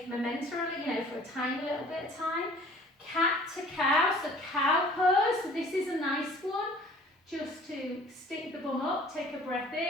momentarily, you know, for a tiny little bit of time. Cat to cow, so cow pose, so this is a nice one. Just to stick the bum up, take a breath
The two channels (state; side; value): normal; both; correlation 0.51